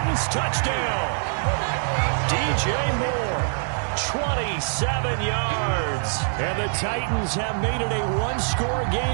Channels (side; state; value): left; silent; 63 dB below the other